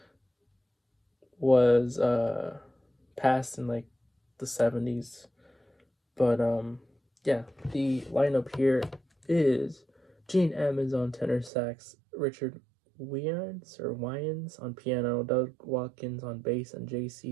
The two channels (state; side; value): drops out; left; at 11.5 s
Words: was passed in the 70s, but yeah, the lineup here is Gene Ammons on tenor sax, Richard Wyans on piano, Doug Watkins on bass, and